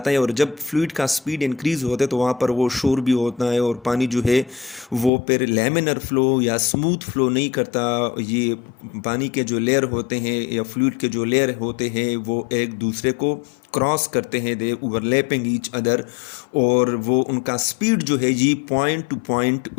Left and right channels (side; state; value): right; drops out; at 5.1 s